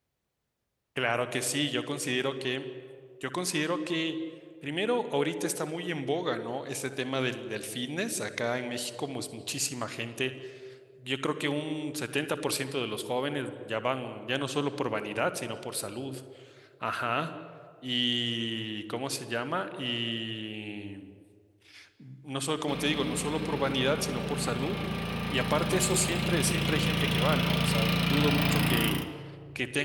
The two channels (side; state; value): both; identical; correlation 1.00